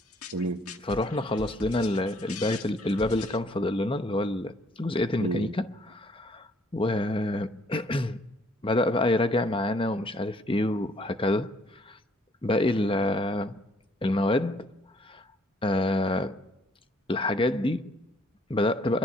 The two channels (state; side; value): normal; both; correlation 0.63